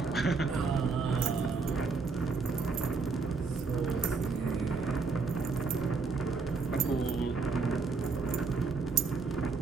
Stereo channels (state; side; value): quieter; left; 4.6 dB